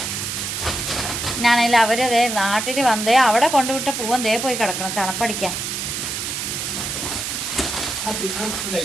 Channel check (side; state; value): right; noise; hiss, 3 dB below the sound